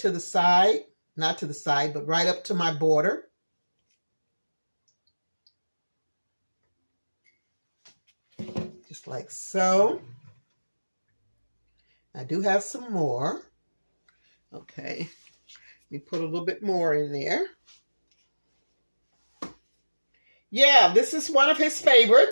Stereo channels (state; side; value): inverted; both; correlation -1.00